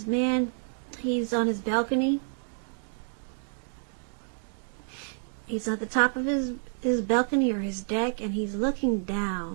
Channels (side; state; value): left; silent; digital silence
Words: man, he's on his balcony. He's at the top of his balcony or his deck, and he's looking